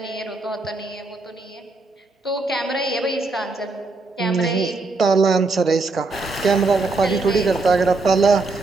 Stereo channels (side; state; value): left; quieter; 3.5 dB